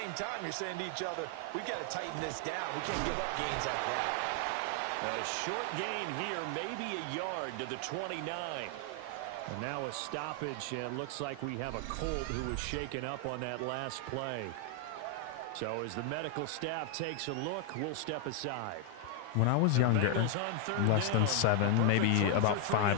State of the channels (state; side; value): different; both; correlation 0.00